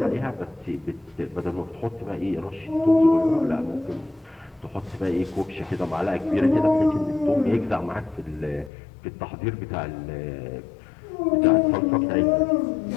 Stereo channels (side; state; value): right; drops out; at 8.7 s